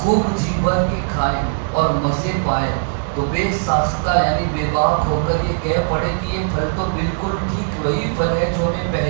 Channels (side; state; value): left; silent; digital silence